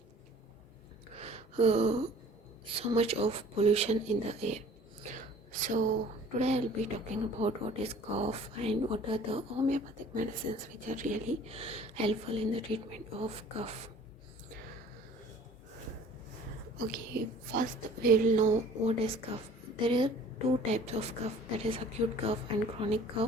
uh, so much of pollution in the air. So today I'll be talking about what is cough and what are the homeopathic medicines which are really helpful in the treatment of cough. Okay, first we'll know what is cough. There are two types of cough, that is acute cough and chronic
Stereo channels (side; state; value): both; normal; correlation 0.50